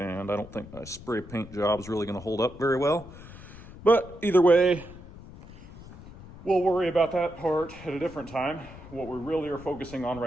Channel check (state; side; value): noise; left; rumble, 17 dB below the sound